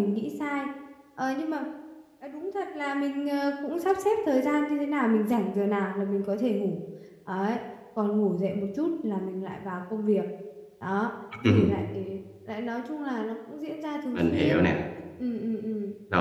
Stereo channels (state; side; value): identical; both; correlation 1.00